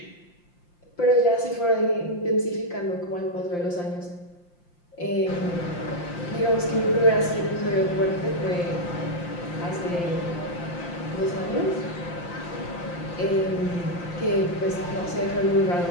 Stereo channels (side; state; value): right; late; 5.8 ms